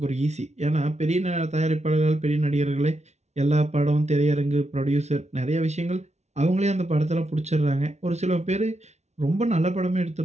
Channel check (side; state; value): left; late; 0.32 ms